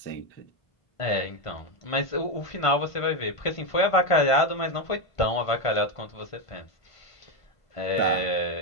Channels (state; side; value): late; right; 1.5 ms